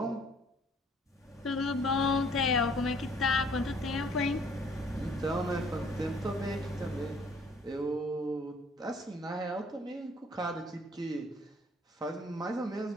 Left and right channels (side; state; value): both; normal; correlation 0.58